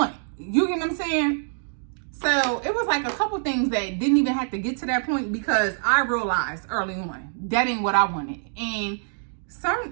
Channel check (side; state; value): left; silent; digital silence